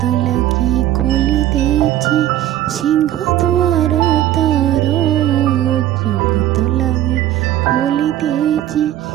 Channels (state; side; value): quieter; left; 12.9 dB